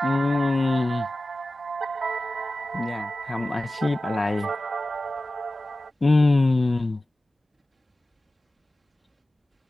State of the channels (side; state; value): both; normal; correlation 0.95